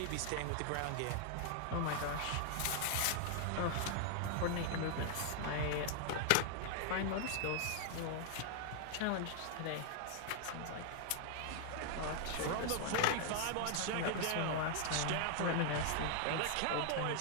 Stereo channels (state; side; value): different; both; correlation 0.00